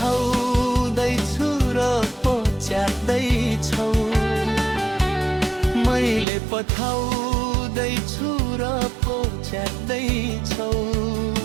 र पहुँच्याउँदैछौ, मैले पठाउँदैछु र पहुँच्याउँदैछौ।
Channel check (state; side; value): drops out; left; at 6.2 s